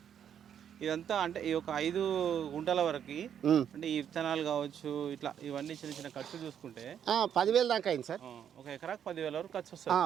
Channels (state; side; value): quieter; left; 8.9 dB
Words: ఇదంతా అంటే ఈ ఒక 5 గుంటల వరకు అంటే ఈ విత్తనాలు కావచ్చు, ఇట్లా ఇవన్నీ చిన్న చిన్న ఖర్చు చూసుకుంటే 10,000 దాకా అయింది సార్. ఒక ఎకరాకు 10,000 వరకు ఖర్చు